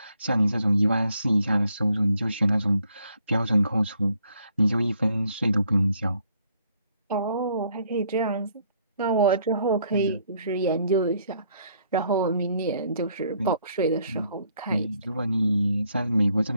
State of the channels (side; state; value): both; inverted; correlation -0.68